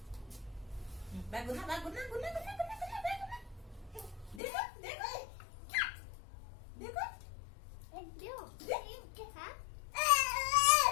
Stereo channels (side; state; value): right; drops out; at 4.4 s